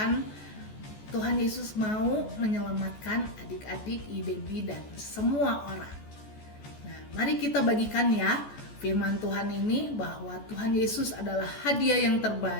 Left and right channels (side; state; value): right; late; 14 ms